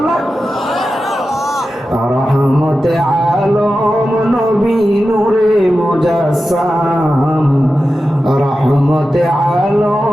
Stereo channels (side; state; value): both; normal; correlation 0.92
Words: রহমতে আলম নবী নূরে মুজাসসাম, রহমতে